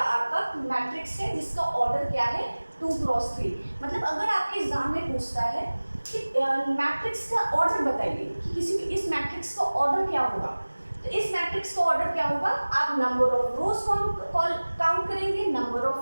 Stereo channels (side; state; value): both; inverted; correlation -1.00